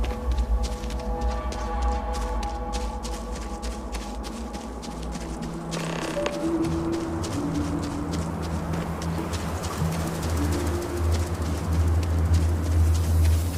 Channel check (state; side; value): identical; both; correlation 1.00